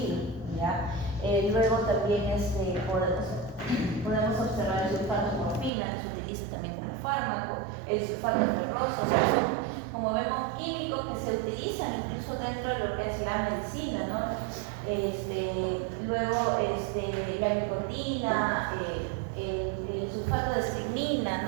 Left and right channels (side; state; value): left; drops out; at 5.7 s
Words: ¿ya? Luego también podemos observar el sulfato de morfina, que se utiliza también como fármaco, el sulfato ferroso, o sea, son, como vemos, químicos que se utilizan incluso dentro de lo que es la medicina, ¿no? Luego la nicotina, el sulfato de estrimina,